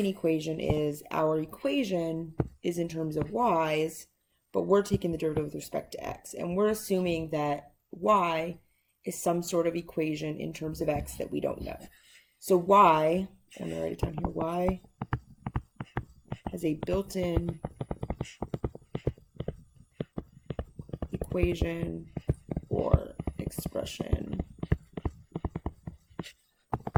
equation is our equation is in terms of y's, but we're taking the derivative with respect to x. And we're assuming that y is some sort of equation in terms of x that we don't know. So y, I'm going to write it down here, y has a built-in equation or expression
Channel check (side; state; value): both; identical; correlation 1.00